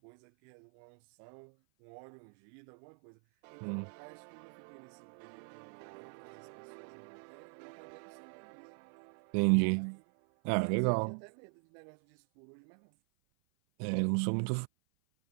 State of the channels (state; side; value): silent; left; 52 dB below the other